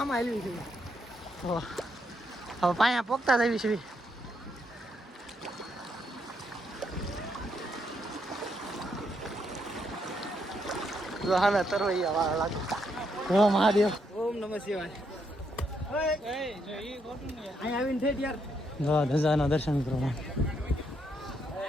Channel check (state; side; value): normal; both; correlation 0.77